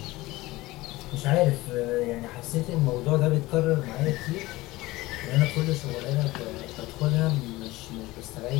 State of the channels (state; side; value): quieter; right; 19.4 dB